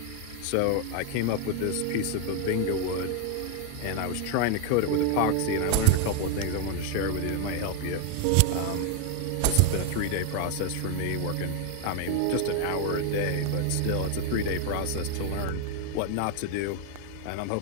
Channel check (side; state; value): both; different; correlation 0.01